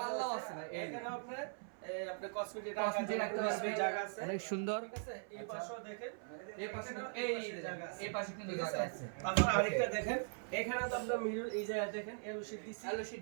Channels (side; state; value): left; silent; 51 dB below the other